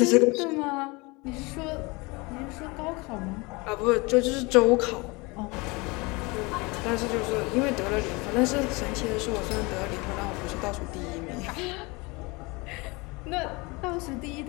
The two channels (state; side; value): quieter; right; 25.9 dB